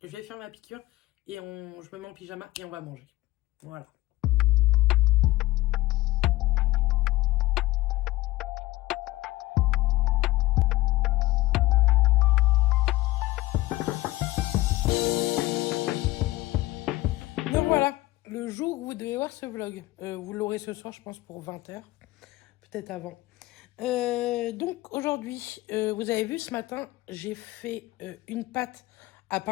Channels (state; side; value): quieter; right; 18.1 dB